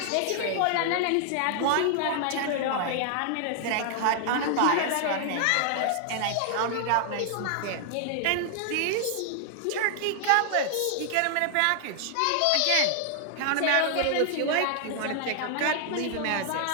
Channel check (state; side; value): different; both; correlation 0.00